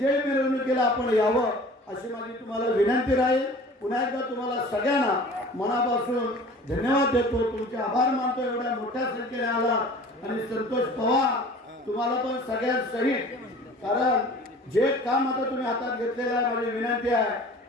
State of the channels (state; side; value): normal; both; correlation 0.44